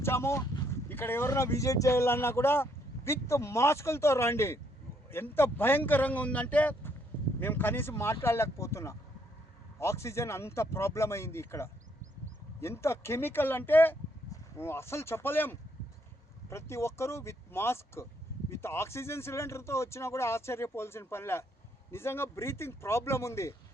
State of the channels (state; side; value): normal; both; correlation 0.71